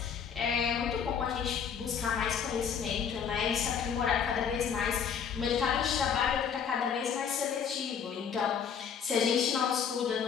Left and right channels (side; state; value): right; quieter; 7.3 dB